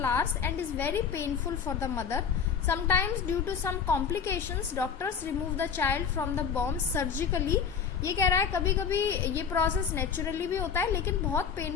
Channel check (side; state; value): right; quieter; 6.9 dB